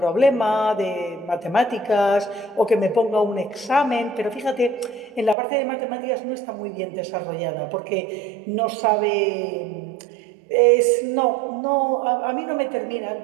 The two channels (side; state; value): left; drops out; at 5.4 s